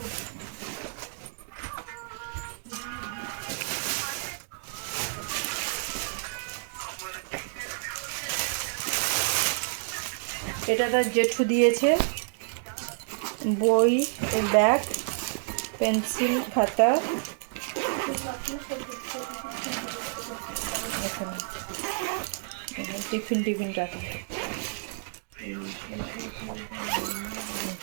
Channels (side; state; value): left; silent; digital silence